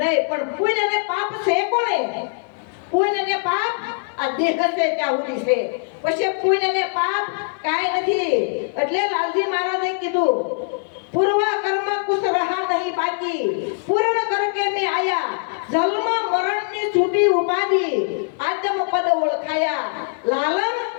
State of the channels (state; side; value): silent; right; 60 dB below the other